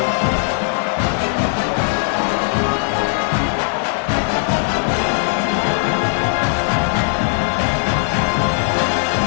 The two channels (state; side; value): silent; right; digital silence